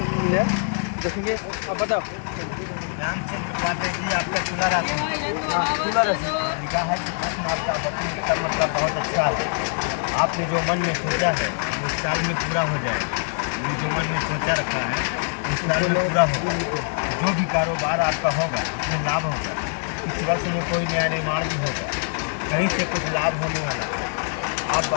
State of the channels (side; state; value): right; silent; 63 dB below the other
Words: देखेंगे। आप बताओ। रामचंद्र पात्र जी आपका खुला राशि लिखा है कि प्रश्न आपका मतलब बहुत अच्छा है। आपने जो मन में सोचा है वो इस साल में पूरा हो जाएगा। ये जो मन में सोचा रखा है इस साल में पूरा होगा। जो भी कारोबार आपका होगा उसमें लाभ होगा। इस वर्ष में कोई नया निर्माण भी होगा, कहीं से कुछ लाभ होने वाला है। आप